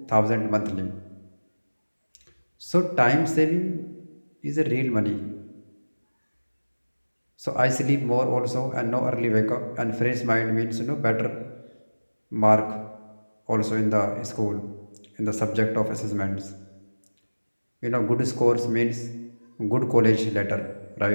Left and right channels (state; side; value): inverted; both; correlation -1.00